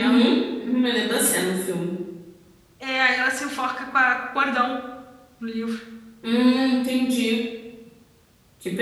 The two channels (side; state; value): both; identical; correlation 1.00